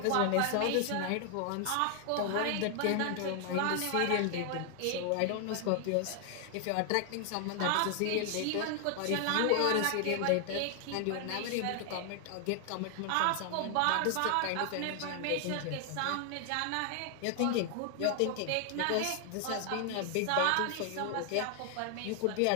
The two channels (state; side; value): different; both; correlation 0.00